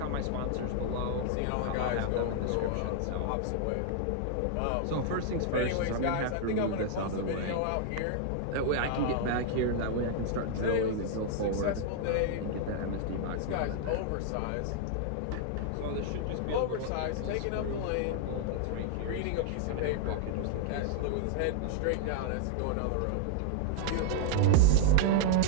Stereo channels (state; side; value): different; both; correlation -0.01